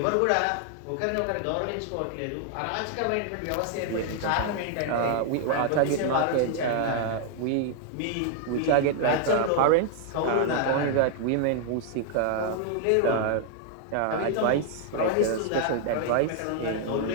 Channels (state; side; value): different; both; correlation -0.01